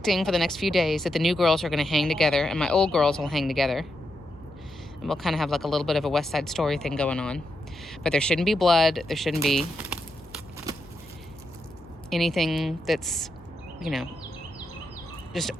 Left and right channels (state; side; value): noise; left; hum, 24 dB below the sound